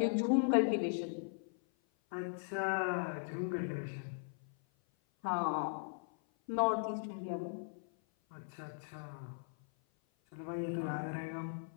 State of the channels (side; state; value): right; silent; 52 dB below the other